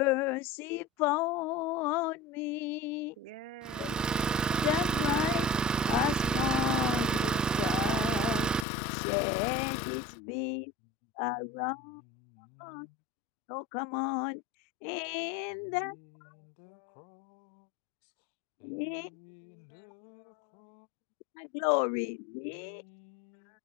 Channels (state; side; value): drops out; right; at 8.7 s